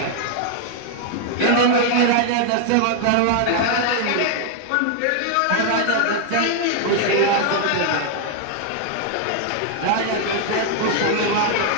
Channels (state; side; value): different; both; correlation 0.00